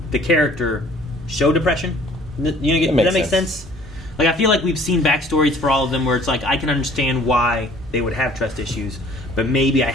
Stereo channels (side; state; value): both; normal; correlation 0.54